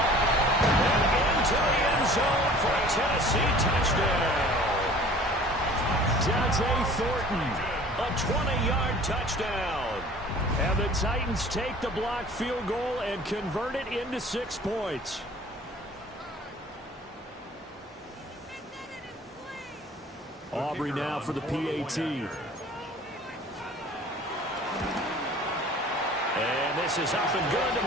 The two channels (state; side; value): normal; both; correlation 0.47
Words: And into the end zone for a Tennessee touchdown. Dante Thornton, a 20-yard touchdown. And the Titans take the blocked field goal and convert it into 6 points. Aubrey now for the PAT. And this is up and good to